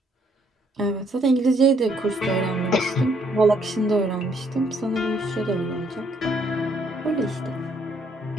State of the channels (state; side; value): normal; both; correlation 0.68